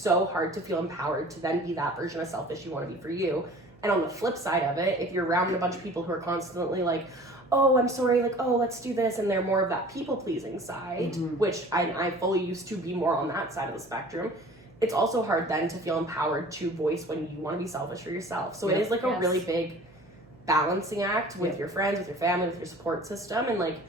hard to feel empowered to then be that version of selfish you want to be for you. And on the flip side of it, if you're around a bunch of people who are constantly like, oh, I'm sorry, like, oh, let's do this, and they're more of that people-pleasing side, which I fully used to be more on that side of the spectrum, it's also hard then to feel empowered to voice when you want to be selfish for yourself. So it is like a really big balancing act with your friends, with your family, with your support system. And like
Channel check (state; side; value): noise; right; hum, 26 dB below the sound